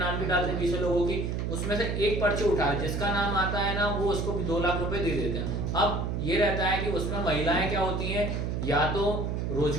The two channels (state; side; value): noise; right; hum, 1 dB below the sound